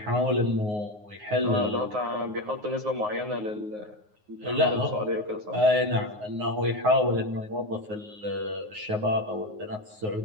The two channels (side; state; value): left; late; 9.5 ms